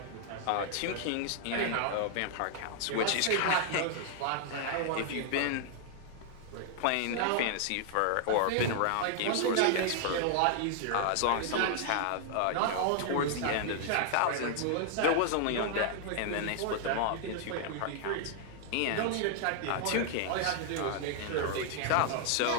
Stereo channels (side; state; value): both; different; correlation 0.00